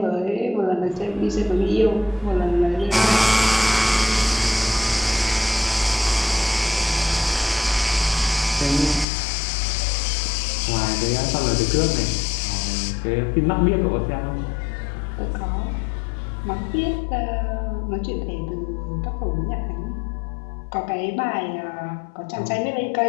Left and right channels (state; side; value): drops out; right; at 9.1 s